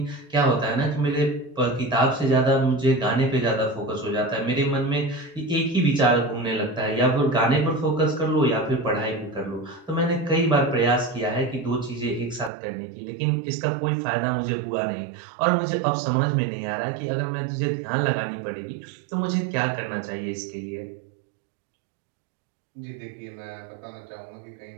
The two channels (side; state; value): left; drops out; at 12.5 s